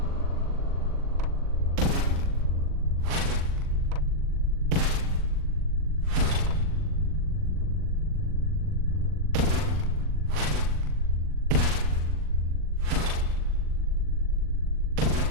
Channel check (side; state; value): left; late; 40 ms